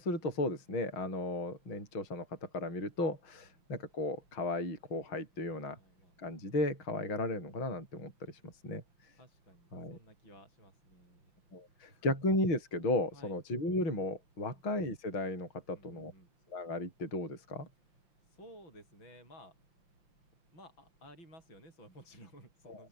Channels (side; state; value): right; late; 5.8 ms